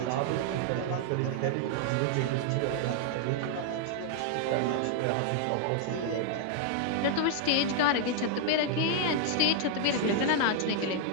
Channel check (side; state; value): both; different; correlation 0.00